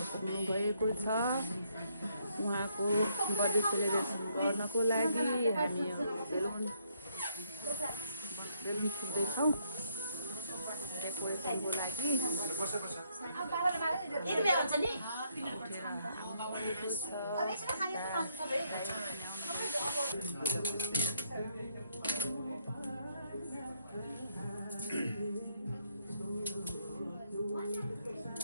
पुग्नु भएको छ। उहाँको बर्थडे सेलिब्रेसन गर्नको लागि हामी बेलुन फुट्दैछौँ डेकोरेसनको लागि।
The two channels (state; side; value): inverted; both; correlation -0.73